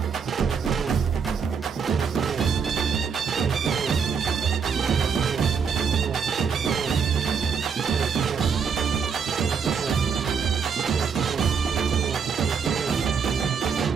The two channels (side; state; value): left; quieter; 6.2 dB